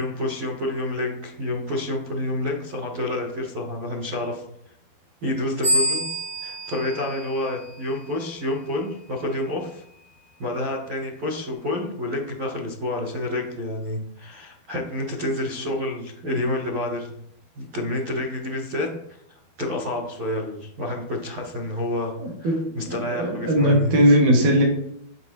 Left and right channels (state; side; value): late; left; 12 ms